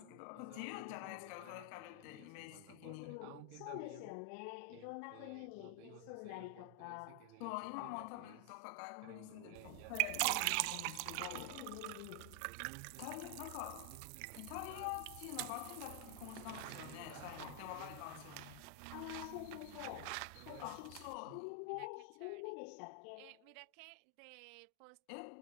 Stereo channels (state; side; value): different; both; correlation 0.00